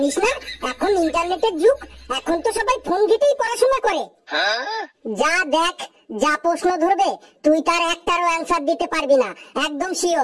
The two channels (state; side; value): identical; both; correlation 1.00